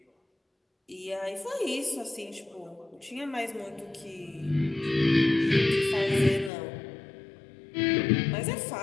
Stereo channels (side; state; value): right; drops out; at 6.5 s